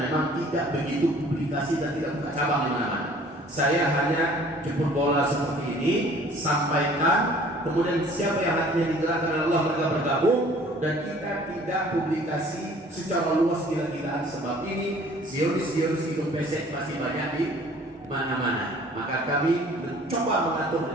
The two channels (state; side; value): normal; both; correlation 0.52